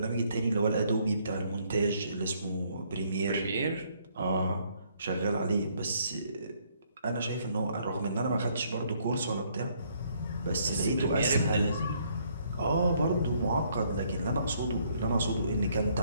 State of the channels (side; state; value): both; inverted; correlation -0.68